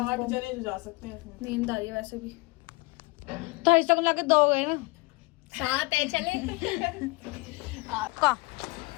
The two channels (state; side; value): quieter; right; 25.3 dB